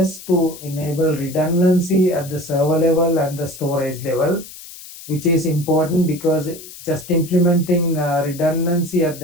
to enable redundancy at the server level and the storage level, which is important because just implementing redundancy at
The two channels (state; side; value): noise; left; hiss, 16 dB below the sound